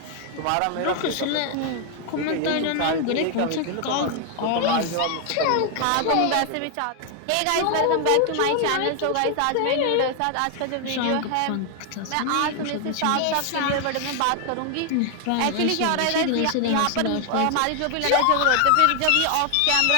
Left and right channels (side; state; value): both; different; correlation 0.00